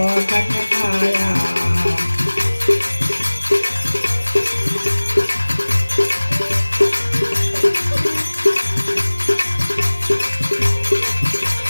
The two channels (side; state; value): both; inverted; correlation -1.00